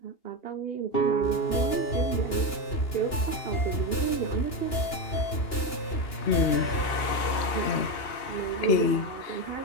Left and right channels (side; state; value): right; late; 2.8 ms